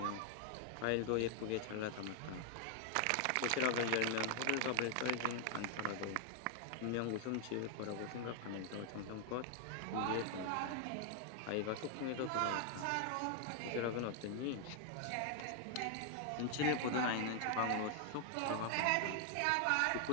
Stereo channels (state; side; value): different; both; correlation 0.00